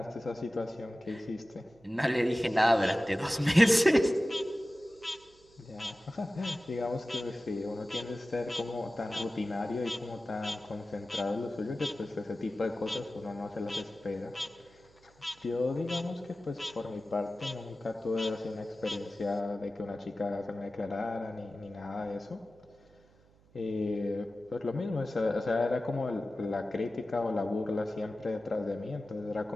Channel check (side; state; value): right; noise; hum, 29 dB below the sound